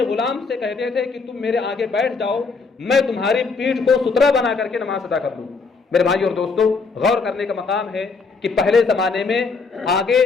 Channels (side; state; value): right; quieter; 4.5 dB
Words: غلام سے کہتے تھے کہ تم میرے آگے بیٹھ جاؤ، میں تمہاری پیٹھ کو سترہ بنا کر کے نماز ادا کر دوں۔ میرے بھائی اور دوستو، غور کرنے کا مقام ہے کہ پہلے زمانے میں آگے